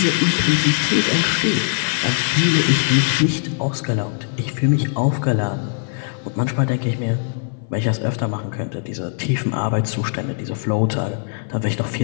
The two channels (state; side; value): silent; right; 58 dB below the other